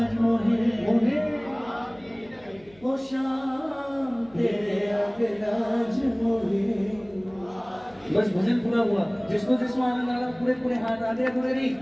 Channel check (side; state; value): left; noise; hum, 28 dB below the sound